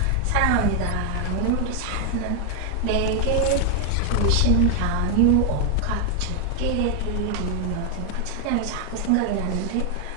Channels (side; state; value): both; different; correlation 0.00